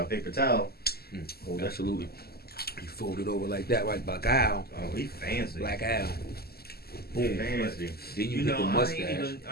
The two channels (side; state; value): right; late; 0.46 ms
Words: paper towel. Hold that. absolutely. You fold it over like that, right? Black Al. Oh, he fancy. Black Al. Boom. Fancy. Then you You hit know, the mustache.